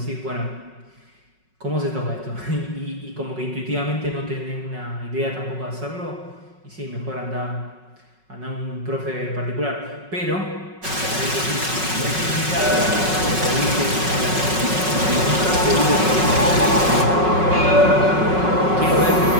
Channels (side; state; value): left; late; 5.4 ms